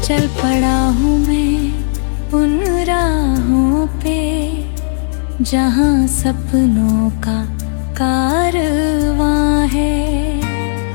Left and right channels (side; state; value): right; silent; digital silence